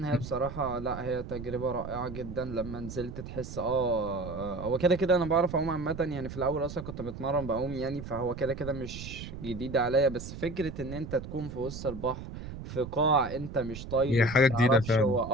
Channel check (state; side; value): noise; right; rumble, 10 dB below the sound